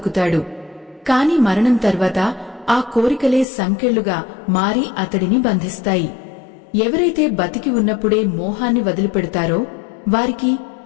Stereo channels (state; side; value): drops out; right; at 3.5 s